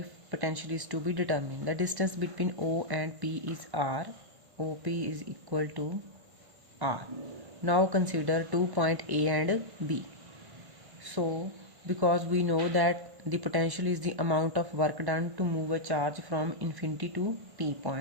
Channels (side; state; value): left; late; 1.0 ms